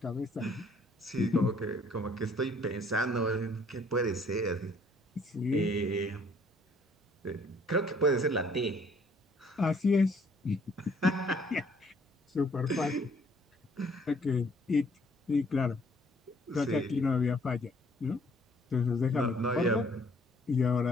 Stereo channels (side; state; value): both; normal; correlation 0.61